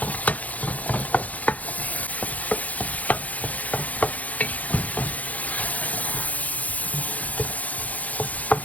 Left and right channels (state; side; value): late; right; 0.074 ms